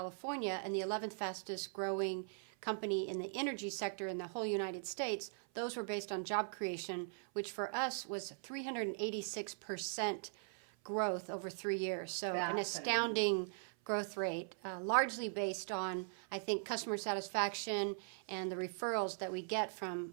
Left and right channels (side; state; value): left; silent; 51 dB below the other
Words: and the 11th fastest growing company in the energy sector in the whole United States, those were based on job creation, which for us was 386% growth over 3 years. So an Fascinating. astounding growth rate, largely based on, I think, customer satisfaction and the referrals that we get from